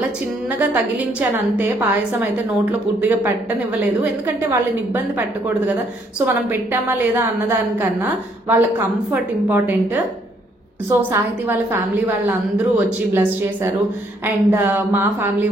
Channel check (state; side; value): normal; both; correlation 0.68